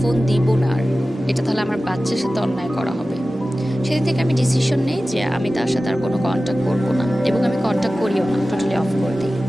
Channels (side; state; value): both; normal; correlation 0.96